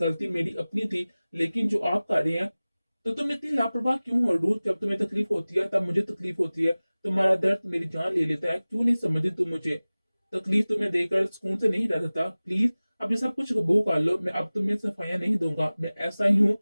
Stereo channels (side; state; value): both; inverted; correlation -0.98